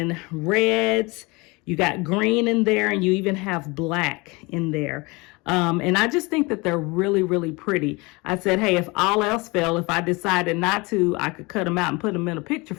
reds. You got green in there, and you even have black in there. And I just think that they're really, really pretty. I said, hey, if all else failed, if I decided not to, I could cut them out and put them in a picture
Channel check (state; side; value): quieter; right; 25.6 dB